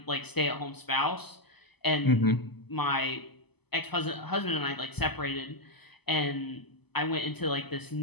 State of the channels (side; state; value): right; late; 0.99 ms